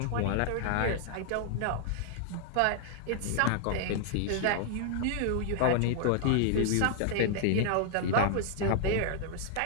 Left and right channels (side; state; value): both; different; correlation -0.01